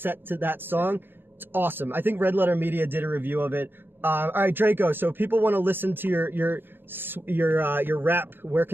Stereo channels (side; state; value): left; late; 0.10 ms